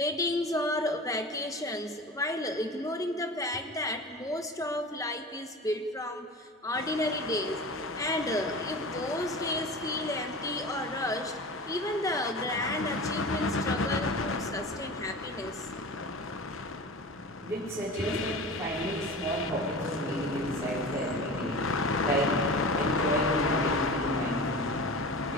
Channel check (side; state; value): both; normal; correlation 0.34